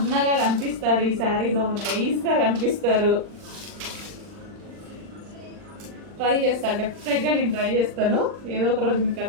కనిపిస్తారు ఈ శారీలో, నైస్గా కనిపిస్తారు. ట్రై చేస్తాను, డెఫినెట్గా నేను ట్రై చేస్తాను. ఏదో ఒక రోజు మీకు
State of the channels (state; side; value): late; left; 39 ms